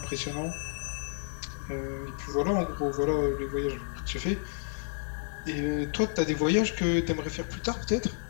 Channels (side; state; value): right; silent; digital silence